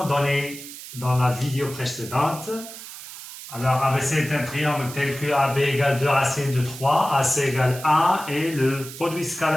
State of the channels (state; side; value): noise; right; hiss, 13 dB below the sound